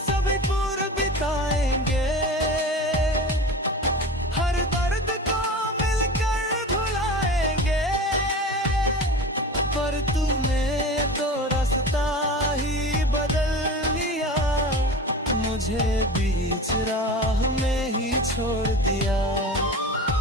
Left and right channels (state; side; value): normal; both; correlation 0.32